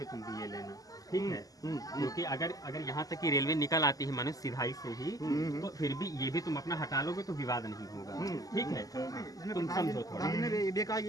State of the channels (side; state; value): right; late; 0.17 ms